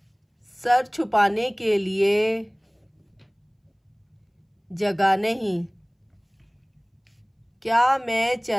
सर छुपाने के लिए जगह नहीं, क्या मैं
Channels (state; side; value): identical; both; correlation 1.00